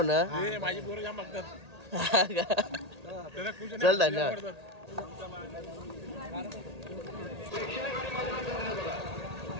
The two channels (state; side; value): late; left; 1.8 ms